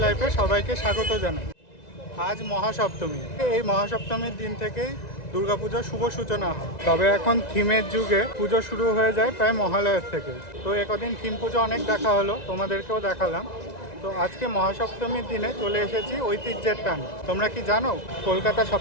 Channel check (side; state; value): right; late; 1.9 ms